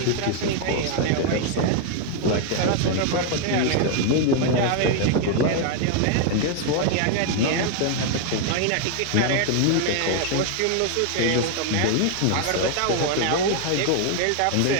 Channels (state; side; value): different; both; correlation 0.00